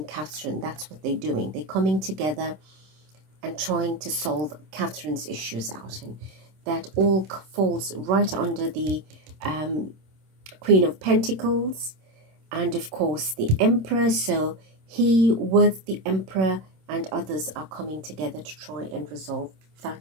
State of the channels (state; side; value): late; left; 26 ms